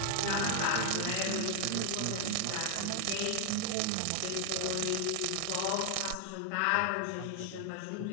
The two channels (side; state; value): both; different; correlation 0.00